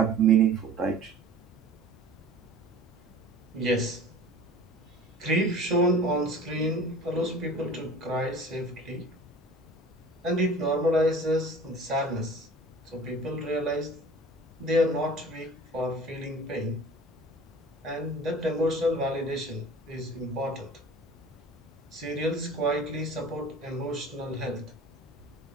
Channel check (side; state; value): both; normal; correlation 0.42